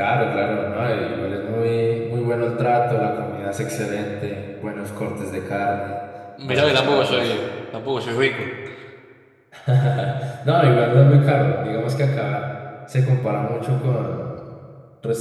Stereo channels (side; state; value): both; identical; correlation 1.00